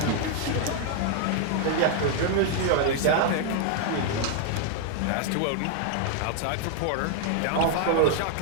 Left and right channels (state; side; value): different; both; correlation 0.00